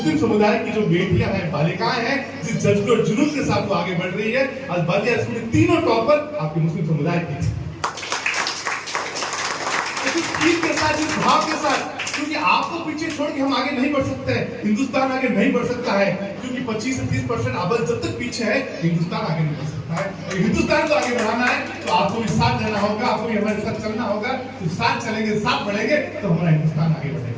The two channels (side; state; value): both; identical; correlation 1.00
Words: समुदाय की जो बेटियां हैं, बालिकाएं हैं, जिस जज्बे और जुनून के साथ वो आगे बढ़ रही है, आज बालिया स्कूल के तीनों टॉपर आपके मुस्लिम समुदाय की के साथ, इस भाव के साथ, क्योंकि आपको पीछे छोड़ के हम आगे नहीं बढ़ सकते हैं, हिंदुस्तान आगे नहीं बढ़ सकता है, क्योंकि 25 से 30% आबादी जब तक पीछे है, हिंदुस्तान आगे नहीं बढ़ सकता है। और हिंदुस्तान को आगे बढ़ाना है तो आपको भी साथ देना होगा, आपको भी हमारे साथ चलना होगा। तो साथ चलेंगे, साथ बढ़ेंगे तो हमारा हिंदुस्तान आगे